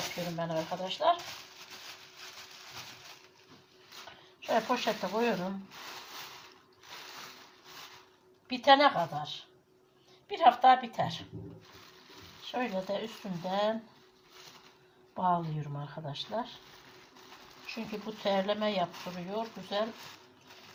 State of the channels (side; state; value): both; identical; correlation 1.00